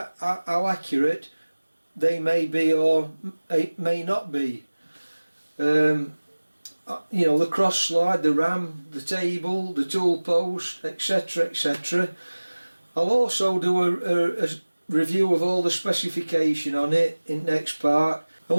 how accurate they may be or may not be. You know, the cross slide, the ram, the table, the tool post, etc, etc. I'll also do a review of all the specification on it in next part. And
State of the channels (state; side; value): inverted; both; correlation -1.00